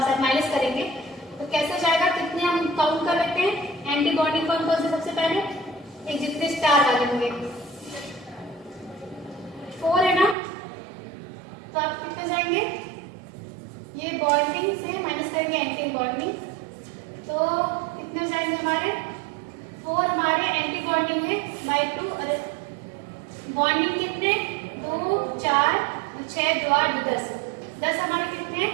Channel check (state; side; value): drops out; left; at 10.4 s